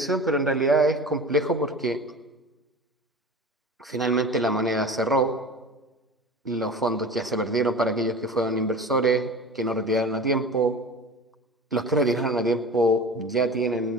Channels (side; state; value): both; normal; correlation 0.36